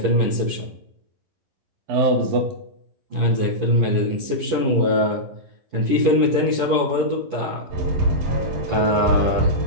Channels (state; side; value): late; left; 11 ms